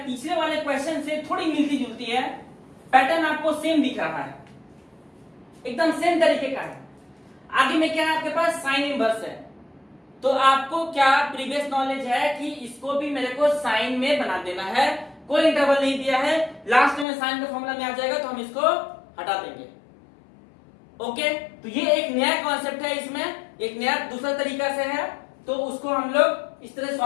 पिछले वाले क्वेश्चन से थोड़ी मिलती जुलती है, पैटर्न आपको सेम दिख रहा है, एकदम सेम तरीके का है। आगे में क्या है आपके पास? साइन इनवर्स है। तो आपको क्या प्रीवियस नॉलेज है कि इसको भी मेरे को साइन में बना देना है, कोई इंटरवल नहीं दिया है, लास्ट में साइन का फॉर्मूला में आ जाएगा तो हम इसको हटा देंगे। ओके, तो ये एक नया कॉन्सेप्ट है, इसमें एक नया दूसरा तरीका से है, तो उसको हम लोग इस तरह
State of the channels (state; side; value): drops out; right; at 17.1 s